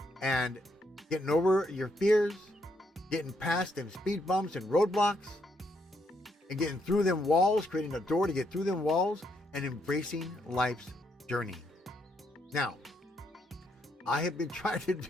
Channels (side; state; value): both; normal; correlation 0.75